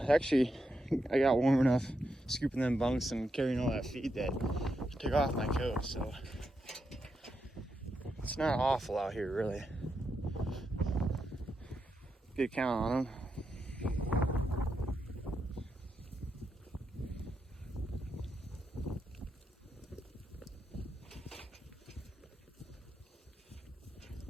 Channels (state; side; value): normal; both; correlation 0.84